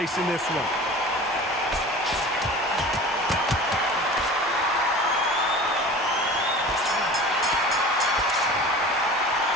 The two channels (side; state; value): both; normal; correlation 0.38